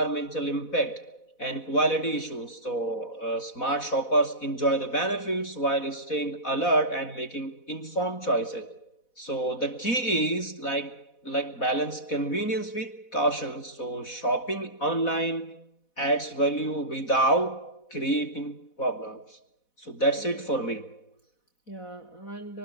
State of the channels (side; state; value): right; late; 4.1 ms